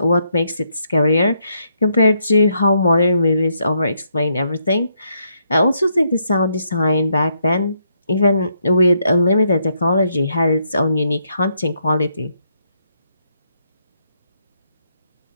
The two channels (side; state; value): both; inverted; correlation -0.76